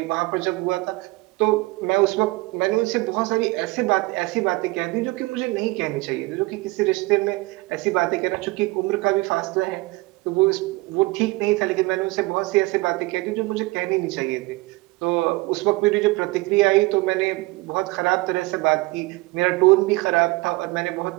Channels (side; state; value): left; quieter; 22.6 dB